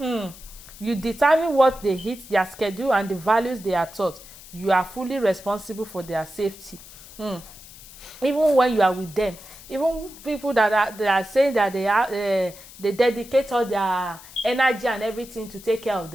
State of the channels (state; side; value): noise; left; hiss, 18 dB below the sound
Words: You determine what they eat, their schedule, and the values they are taught. You are fully responsible for their safety. Even when you are with them, even people that are saying that they dedicate all their energy and everything to take care of